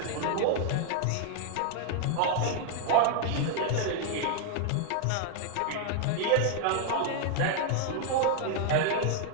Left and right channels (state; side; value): different; both; correlation 0.00